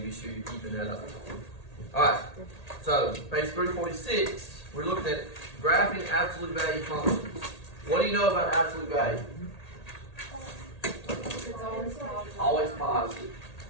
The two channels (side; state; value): right; late; 1.8 ms